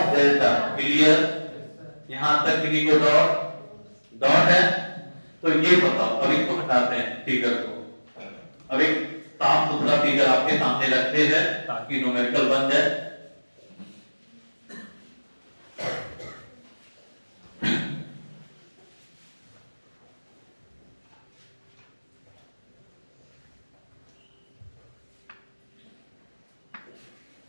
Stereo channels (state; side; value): inverted; both; correlation -1.00